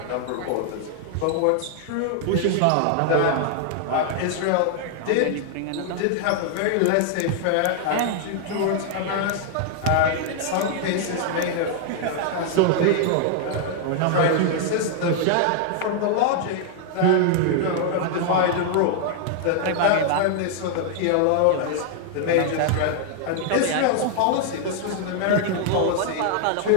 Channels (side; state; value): both; different; correlation 0.00